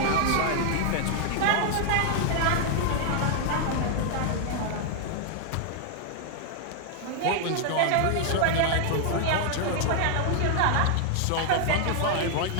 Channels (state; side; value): different; both; correlation 0.00